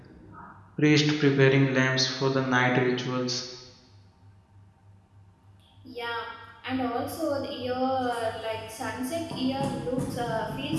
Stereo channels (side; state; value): both; identical; correlation 1.00